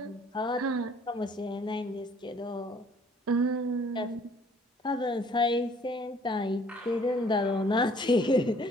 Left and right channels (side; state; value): both; normal; correlation 0.58